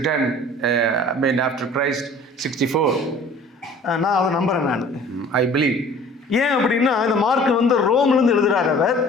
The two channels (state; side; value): normal; both; correlation 0.48